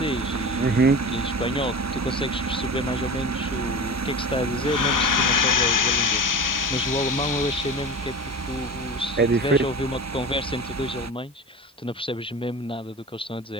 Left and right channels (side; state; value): both; normal; correlation 0.34